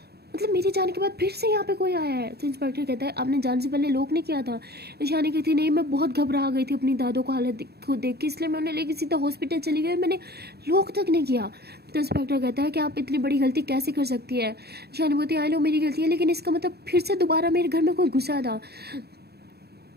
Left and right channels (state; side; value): late; left; 0.47 ms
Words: मेरे जाने के बाद फिर से यहाँ पे कोई आया है। तो इंस्पेक्टर कहता है आपने जाने से पहले लॉक नहीं किया था? ईशानी कहती नहीं, मैं बहुत घबरा गई थी अपनी दादो को हालत को देख के, इसलिए मैं उन्हें लेके सीधा हॉस्पिटल चली गई, मैंने लॉक तक नहीं किया। तो इंस्पेक्टर कहता है कि आप इतनी बड़ी गलती कैसे कर सकती है? ईशानी बोलती आई लो मेरी गलती है, लेकिन इसका मतलब फिर से दोबारा मेरे घर में कोई घुसा था